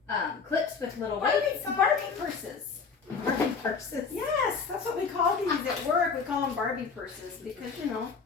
clips with little weights on Barbie purses. Barbie purses. Yes, that's what we call these at work. We call them Barbie purses because, you know,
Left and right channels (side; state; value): right; quieter; 5.3 dB